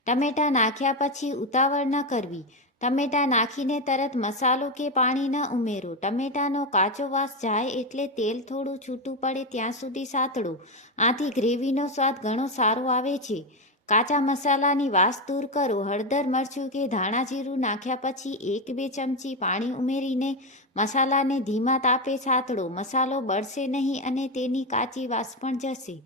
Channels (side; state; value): both; normal; correlation 0.11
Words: ટમેટાં નાખ્યા પછી ઉતાવળ ન કરવી. ટમેટાં નાખીને તરત મસાલો કે પાણી ન ઉમેરો. ટમેટાનો કાચો વાસ જાય એટલે તેલ થોડું છૂટું પડે ત્યાં સુધી સાતળો. આથી ગ્રેવીનો સ્વાદ ઘણો સારો આવે છે. કાચા મસાલાની વાસ દૂર કરો. હળદર, મરચું કે ધાણા જીરું નાખ્યા પછી 1-2 ચમચી પાણી ઉમેરીને મસાલાને ધીમા તાપે સાતળો. મસાલો બળશે નહીં અને તેની કાચી વાસ પણ જશે.